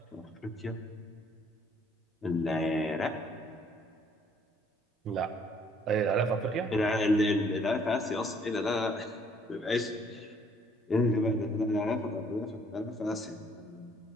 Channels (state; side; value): normal; both; correlation 0.63